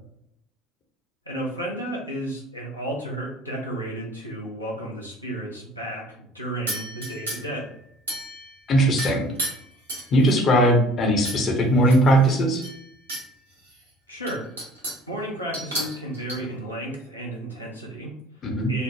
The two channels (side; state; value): both; normal; correlation 0.50